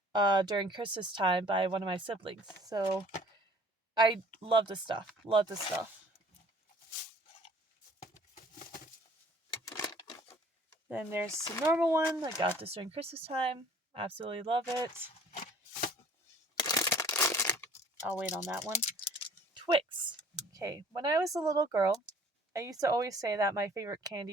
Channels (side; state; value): both; normal; correlation 0.53